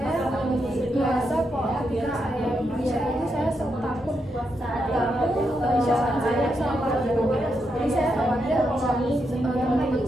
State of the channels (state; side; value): normal; both; correlation 0.83